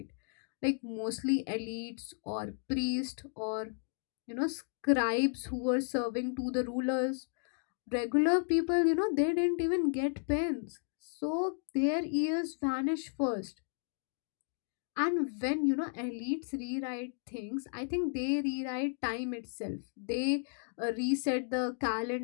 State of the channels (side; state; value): right; silent; 55 dB below the other